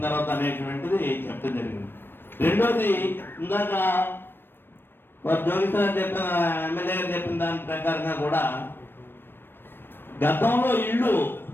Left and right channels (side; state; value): right; late; 0.098 ms